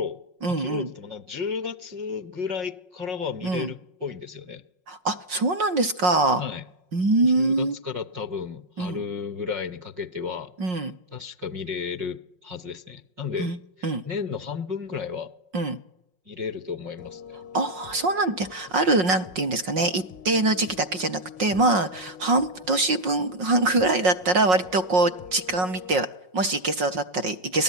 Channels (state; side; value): late; left; 5.5 ms